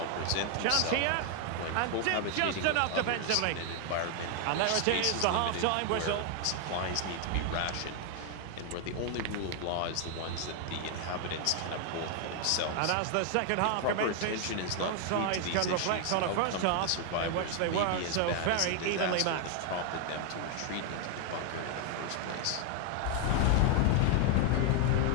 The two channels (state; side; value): different; both; correlation 0.00